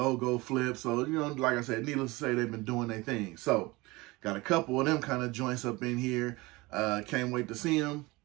flips. So, you know, like I said, needless to say, they've been doing their thing. So, got a couple of them kind of joints up in here. Can't wait to see them.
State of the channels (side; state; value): left; quieter; 22.4 dB